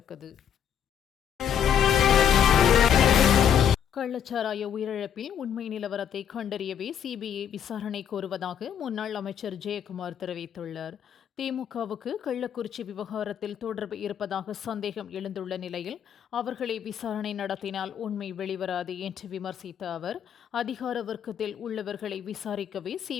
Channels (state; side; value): quieter; right; 8.7 dB